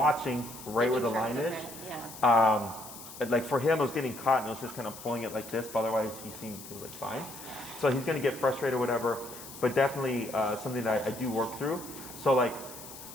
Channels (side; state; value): left; noise; hiss, 14 dB below the sound